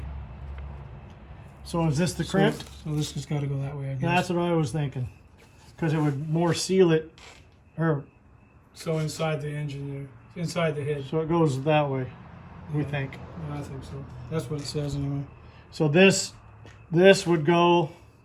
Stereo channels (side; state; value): both; identical; correlation 1.00